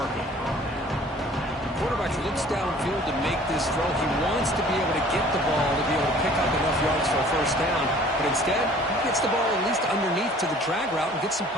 Quarterback looks downfield to make this throw. He wants to be able to get the ball to be able to pick up enough yards for a 1st down. But instead, he gets the ball at least underneath to the drag route and gets some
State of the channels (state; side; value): normal; both; correlation 0.51